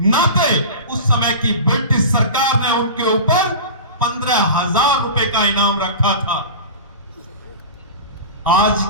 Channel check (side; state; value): both; inverted; correlation -0.32